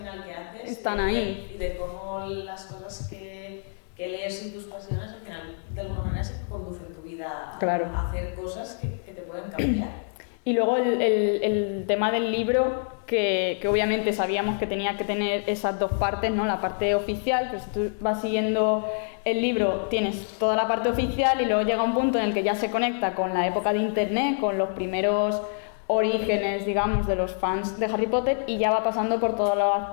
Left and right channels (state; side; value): silent; right; 61 dB below the other